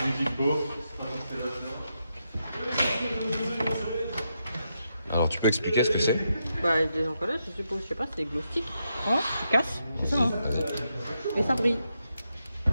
Alors, tu peux expliquer ce que c'est? Bah, des encollages, je suppose, je sais pas, c'est des glow sticks. Hein, tu casses, c'est ça, hein. Et ça brille.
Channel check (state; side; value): inverted; both; correlation -0.83